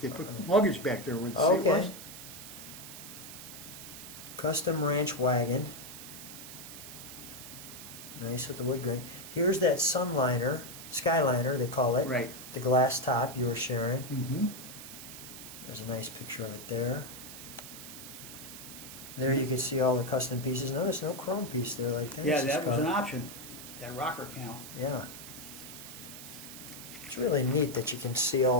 They put luggage back there where the seat was. Okay. Custom ranch wagon. Nice with the wood grain. Here's that sunliner, skyliner they call it. Right. The glass top you were sharing. Mm-hmm. There's a nice picture of it there. There you can see all the custom pieces. Notice no chrome piece there like that. Yeah, that was an option. That rocker panel. Yeah. It's really neat that you can see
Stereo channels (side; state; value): right; noise; hiss, 12 dB below the sound